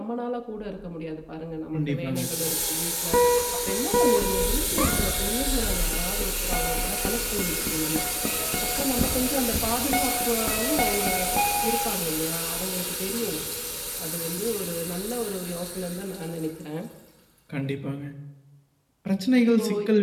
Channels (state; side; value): identical; both; correlation 1.00